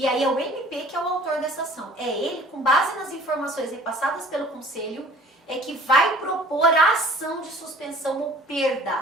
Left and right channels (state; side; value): normal; both; correlation 0.50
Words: aí é o MP que é o autor dessa ação. É ele, com base nas informações repassadas pelo conselho, é que vai propor a ação de suspensão ou